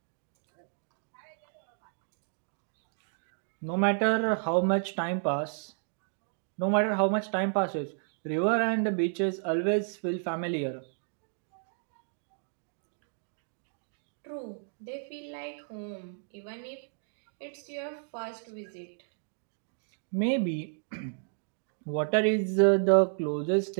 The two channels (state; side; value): silent; left; digital silence